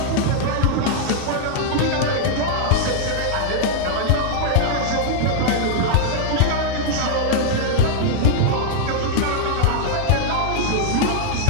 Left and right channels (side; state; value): both; different; correlation 0.00